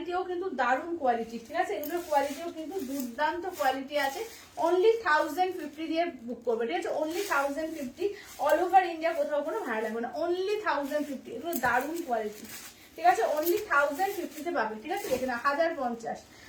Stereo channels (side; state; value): both; identical; correlation 1.00